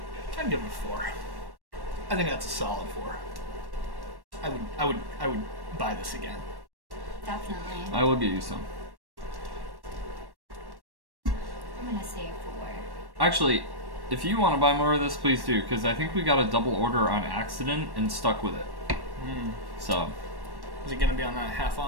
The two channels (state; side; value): late; left; 1.1 ms